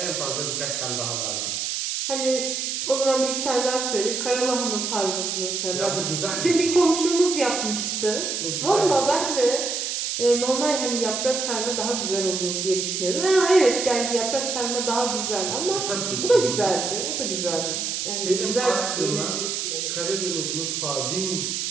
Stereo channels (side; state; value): right; noise; hiss, 2 dB below the sound